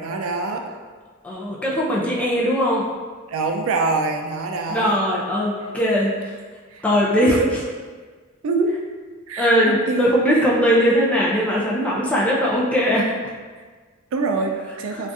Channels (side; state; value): both; normal; correlation 0.38